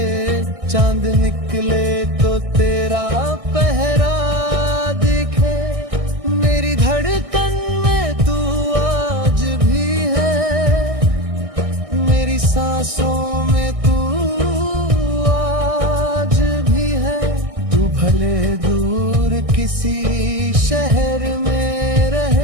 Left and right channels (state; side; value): late; left; 1.6 ms